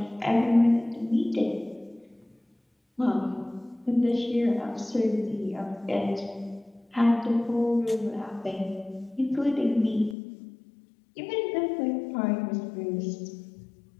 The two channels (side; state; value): right; drops out; at 10.2 s